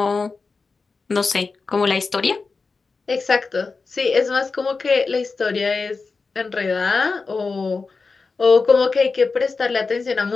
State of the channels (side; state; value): right; quieter; 4.4 dB